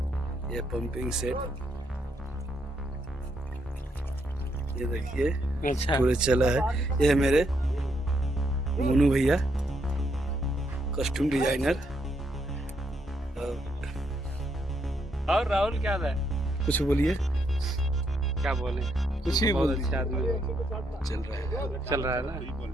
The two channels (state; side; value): normal; both; correlation 0.76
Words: ये पंपिंग सेट, ये देखिए अच्छा पूरे चला है। ये है मेरे मोनू भैया, कॉस्ट्यूम डिजाइनर। और राहुल क्या है? कुछ बोलिए। क्या बोले? कुछ ही बहुत बोलिए। अच्छा आदमी चल रहा है ना।